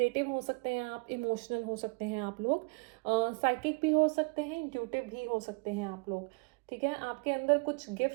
हो सकते हैं आप, इमोशनल हो सकते हैं आप लोग, साइकिक भी हो सकते हैं, इंट्यूटिव भी हो सकते हैं आप लोग, ठीक है। आपके अंदर कुछ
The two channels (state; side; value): quieter; left; 31.6 dB